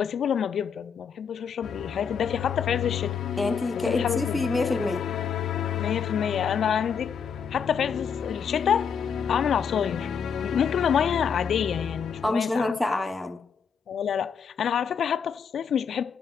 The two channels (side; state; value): right; quieter; 6.7 dB